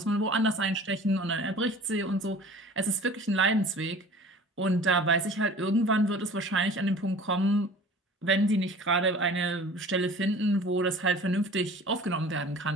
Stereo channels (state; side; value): normal; both; correlation 0.44